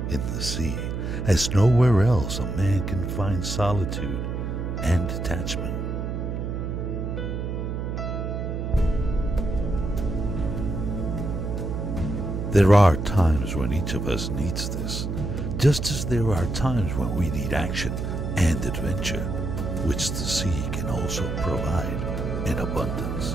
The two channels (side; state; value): right; noise; hum, 3 dB below the sound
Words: in the sea, as nowhere else a man can find solitude and detachment. There are times when each of us needs this, just as there are times when we need action and adventure, which the sea can also provide in